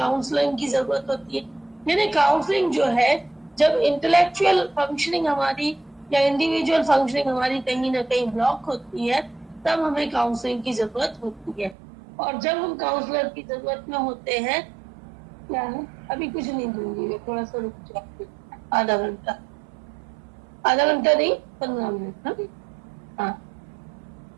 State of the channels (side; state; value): left; drops out; at 11.8 s